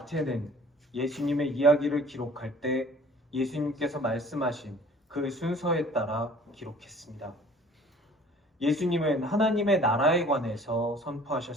예수님의 이야기를 기록할 때 예수님께서 말씀하신 그 순서에 따라 기록했습니다. 예수님은 하나님의 나라에 관해서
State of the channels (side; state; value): both; normal; correlation 0.50